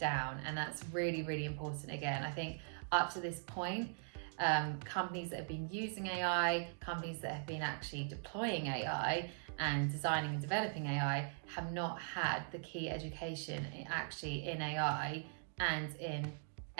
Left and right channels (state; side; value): silent; left; digital silence